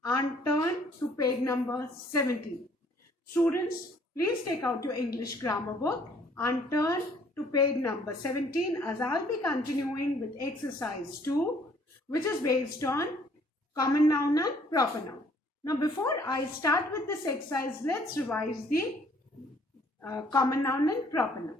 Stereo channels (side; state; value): both; normal; correlation 0.60